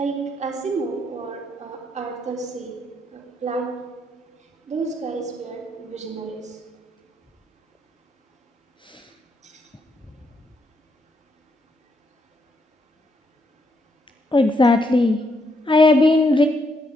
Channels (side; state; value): both; normal; correlation 0.76